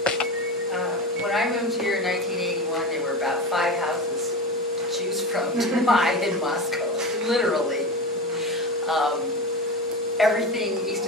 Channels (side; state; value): both; normal; correlation 0.25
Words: When I moved here in 1981, there were about 5 houses to choose from to buy in Moscow, literally. Everything east